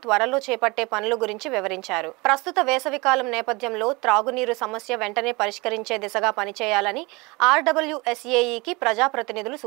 త్వరలో చేపట్టే పనుల గురించి వివరించారు. ప్రస్తుత వేసవికాలం నేపథ్యంలో త్రాగునీరు సమస్య వెంటనే పరిష్కరించే దిశగా పనిచేయాలని ఆర్డబ్ల్యూఎస్ఏఈకి ప్రజాప్రతినిధులు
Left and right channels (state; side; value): quieter; left; 25.4 dB